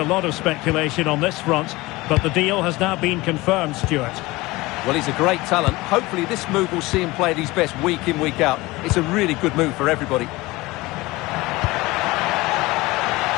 lot of speculation on this front, but the deal has now been confirmed, Stuart. Well, he's a great talent. Hopefully this move will see him play at his best week in, week out. It's a really good move for everybody.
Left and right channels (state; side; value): quieter; right; 21.0 dB